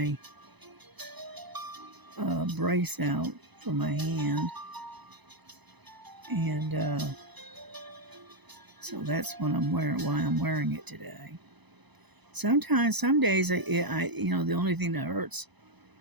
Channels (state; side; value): late; left; 1.0 ms